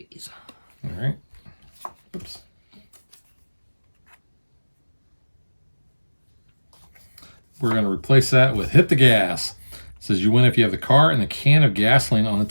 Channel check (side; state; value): both; inverted; correlation -1.00